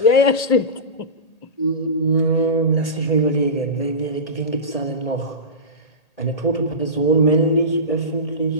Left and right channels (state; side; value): late; right; 1.8 ms